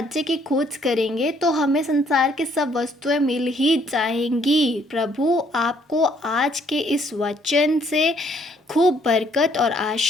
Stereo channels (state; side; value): normal; both; correlation 0.66